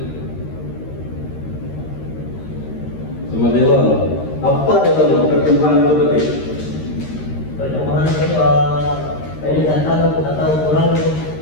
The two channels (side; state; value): right; late; 13 ms